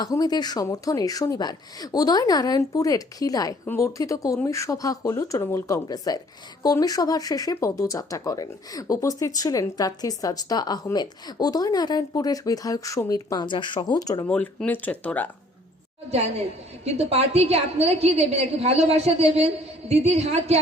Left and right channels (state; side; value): normal; both; correlation 0.58